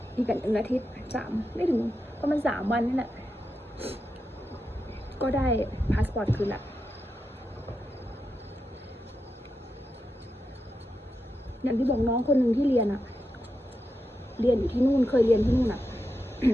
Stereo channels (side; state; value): both; normal; correlation 0.87